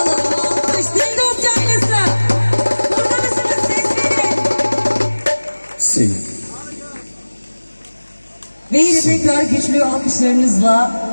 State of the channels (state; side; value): inverted; both; correlation -1.00